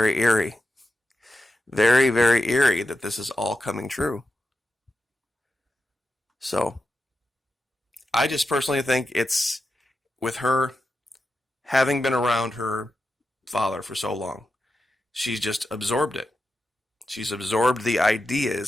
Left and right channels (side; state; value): both; normal; correlation 0.89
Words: eerie. Very, very eerie that this is all coming true. So, I just personally think it's with her having been around her father for so long, she's just absorbed it. She's absorbed the